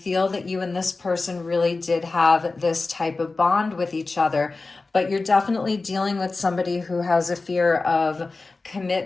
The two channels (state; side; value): quieter; right; 3.7 dB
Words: that you and this person really did have this type of bond with each other. But you're definitely dealing with somebody who has a fear of